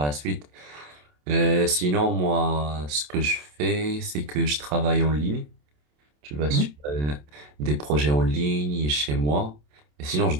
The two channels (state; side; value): late; left; 27 ms